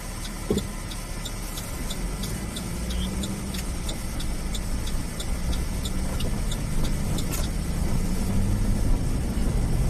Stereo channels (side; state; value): both; identical; correlation 1.00